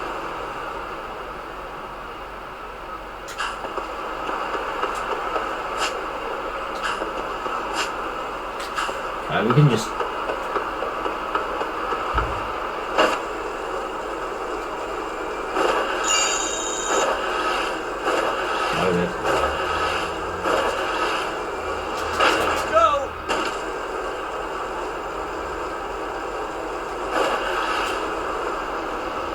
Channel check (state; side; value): identical; both; correlation 1.00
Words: We can just... Load it. Go!